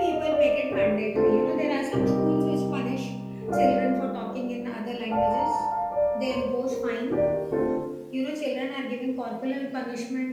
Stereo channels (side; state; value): both; identical; correlation 1.00